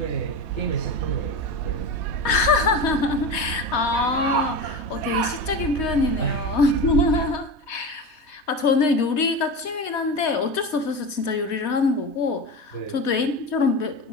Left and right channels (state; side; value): late; right; 3.2 ms